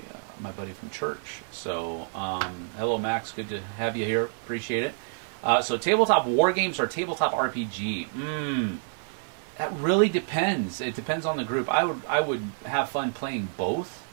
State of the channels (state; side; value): silent; left; digital silence